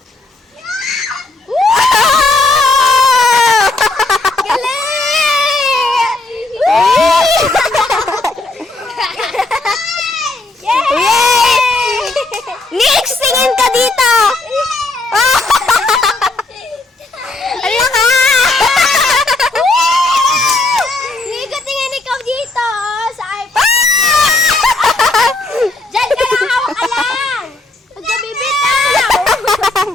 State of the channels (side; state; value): right; quieter; 3.0 dB